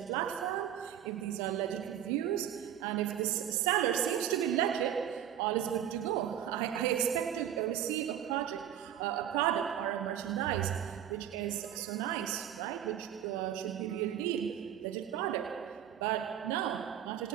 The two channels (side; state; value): left; quieter; 10.4 dB